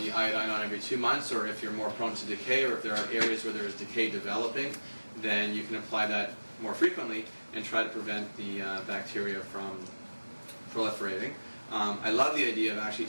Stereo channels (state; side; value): inverted; both; correlation -1.00